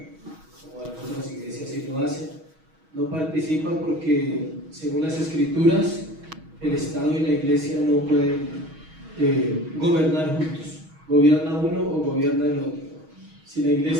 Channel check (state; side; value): late; left; 6.3 ms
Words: como algunas iglesias sí lo hacen. No participa porque, según las Escrituras, el Estado y la iglesia no pueden gobernar juntos. Gobierna uno o gobierna el otro. Si la